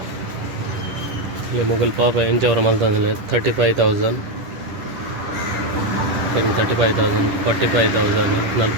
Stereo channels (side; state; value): left; late; 10 ms